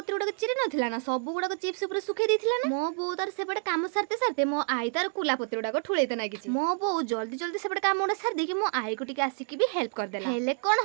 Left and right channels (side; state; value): left; silent; 56 dB below the other